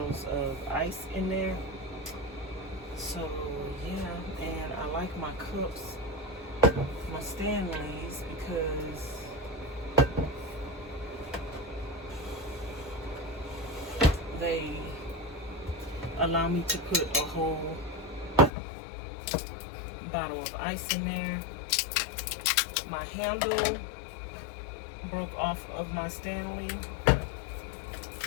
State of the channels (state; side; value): drops out; right; at 18.5 s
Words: of ice in there. So yeah, and I like my cups, my Stanleys, because they allow me to put a whole bottle of ice in there. My handle broke off of my Stanley,